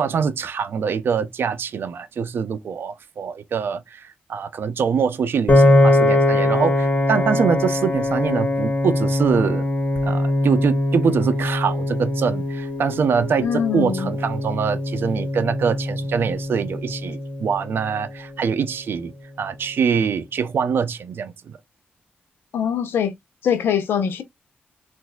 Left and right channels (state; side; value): normal; both; correlation 0.72